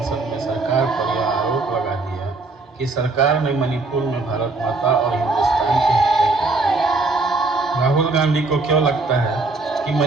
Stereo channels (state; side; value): quieter; left; 3.5 dB